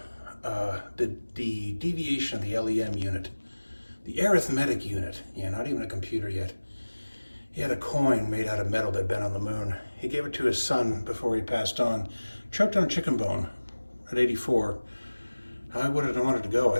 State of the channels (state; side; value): inverted; both; correlation -1.00